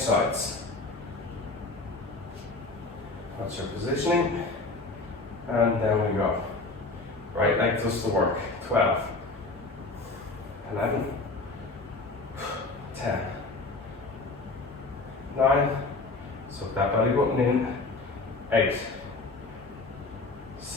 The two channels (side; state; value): right; quieter; 3.4 dB